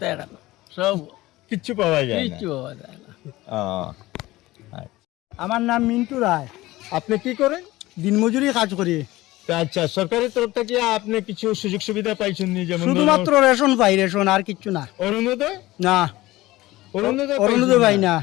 এখানে সব কিচ্ছু পাওয়া যায় না কিচ্ছু পাওয়া যায় না ও, আমার নাম মিন্টু রায় আপনি কি করেন দিনমজুরি কাজ করি তা আচ্ছা সরকারের তরফ থেকে আপনি কিছু সুযোগ সুবিধা পাইছেন নি যেমন শুধুমাত্র রেশন পাই রেশন আর কিচ্ছু না অরুণোদয় না অরুণোদয় অরুণোদয় পাই না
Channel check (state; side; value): quieter; right; 18.2 dB